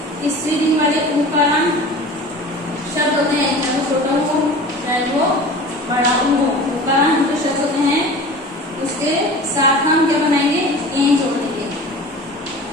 स्त्रीलिंग वाले उकारांत शब्द होते हैं, चाहे वो छोटा हो चाहे वो बड़ा हो, उकारांत जो शब्द होते हैं उसके साथ हम क्या बनाएंगे, ए जोड़ देंगे,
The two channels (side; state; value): both; normal; correlation 0.38